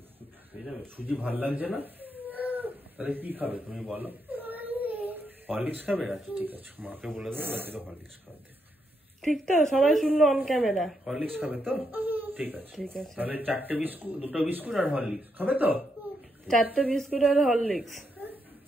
সুজি ভাল লাগছে না? তাহলে কি খাবে তুমি বলো? হরলিক্স খাবে? আচ্ছা ঠিক আছে, মাকে বলে দেবো হরলিক্স খাওয়াতে। ঠিক তো? সবাই শুনলো অন ক্যামেরা। হরলিক্স খাবে তো? ঠিক আছে ঠিক আছে। তাহলে 4টে বিস্কুট, 2টো বিস্কুট আর হরলিক্স খাবে তো? 4টে বিস্কুট আর হরলিক্স।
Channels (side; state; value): both; normal; correlation 0.80